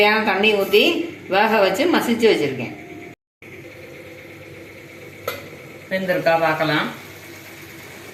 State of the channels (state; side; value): identical; both; correlation 1.00